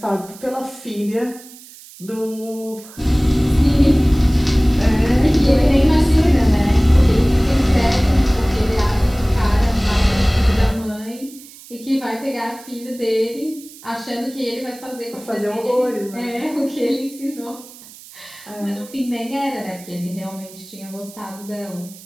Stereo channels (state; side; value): noise; right; hiss, 20 dB below the sound